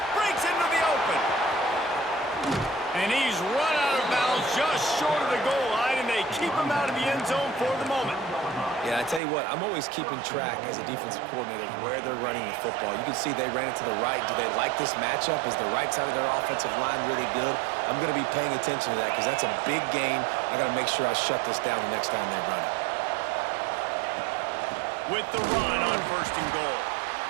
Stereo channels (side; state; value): left; drops out; at 9.2 s